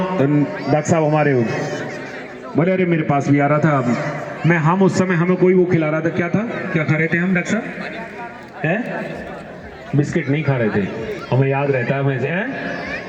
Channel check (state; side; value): identical; both; correlation 1.00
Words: डॉक्टर साहब हमारे हो। बोले अरे मेरे पास भी आ रहा था मैं, हम उस समय हमें कोई वो खिला रहा था, क्या था, क्या खा रहे थे हम डॉक्टर साहब? हैं? बिस्किट नहीं खा रहे थे, हमें याद रहता है वैसे। हैं?